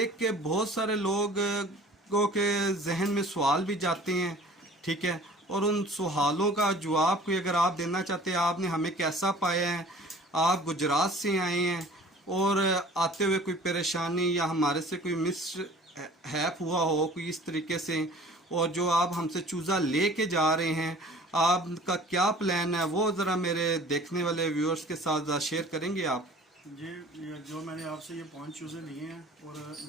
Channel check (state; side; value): normal; both; correlation 0.47